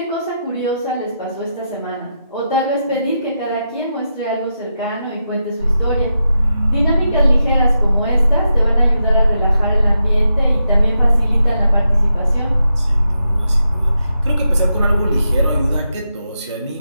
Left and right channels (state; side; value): inverted; both; correlation -0.85